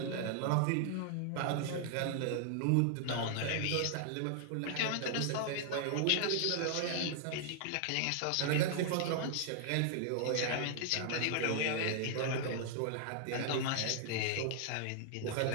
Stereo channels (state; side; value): different; both; correlation -0.01